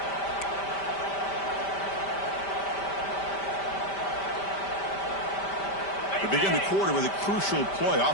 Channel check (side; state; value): right; late; 5.1 ms